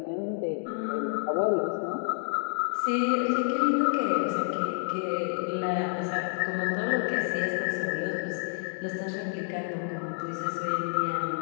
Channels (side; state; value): right; silent; digital silence